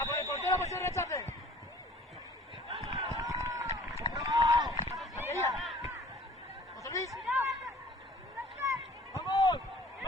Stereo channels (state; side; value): normal; both; correlation 0.50